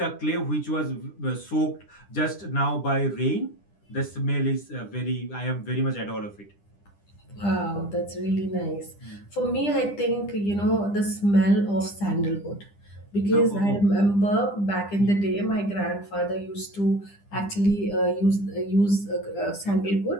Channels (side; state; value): right; late; 10 ms